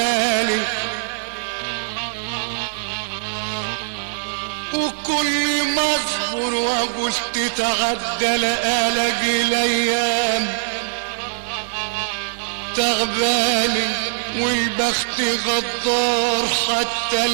وكل ما اصبر واقول تتعدى الاقي الايام تعباني والبخت غدار حتى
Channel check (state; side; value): silent; left; digital silence